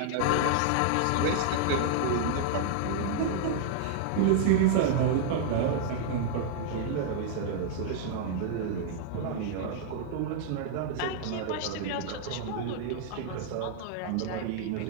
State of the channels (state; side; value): different; both; correlation -0.01